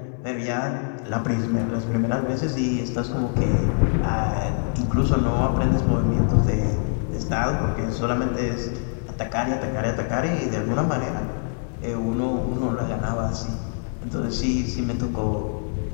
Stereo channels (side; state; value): right; silent; 62 dB below the other